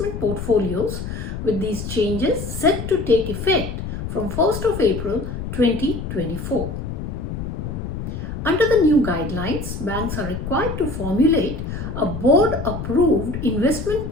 portfolios, with these changes set to take effect from 1st of April 2024. Under the new guidelines, banks are required to formulate a board-approved investment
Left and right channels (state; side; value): noise; left; rumble, 6 dB below the sound